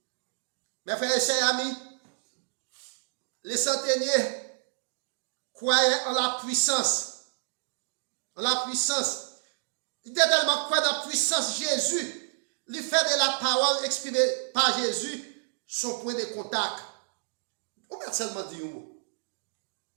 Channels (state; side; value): silent; left; digital silence